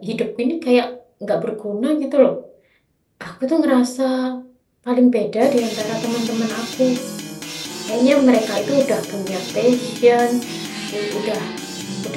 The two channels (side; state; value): both; identical; correlation 1.00